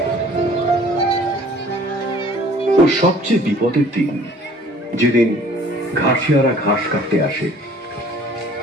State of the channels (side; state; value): both; normal; correlation 0.52